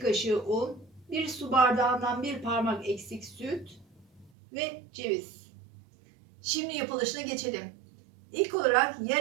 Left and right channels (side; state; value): left; drops out; at 4.3 s